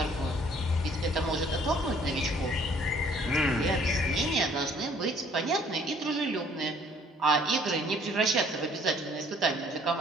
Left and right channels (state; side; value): normal; both; correlation 0.59